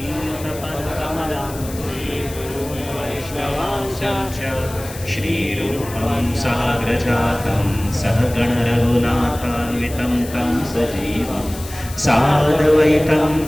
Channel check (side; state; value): left; noise; hiss, 15 dB below the sound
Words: वैष्णवांशं च श्रीरूपं साग्रजातं सहगणरघुनाथान्वितं तं सजीवं साद्वैतं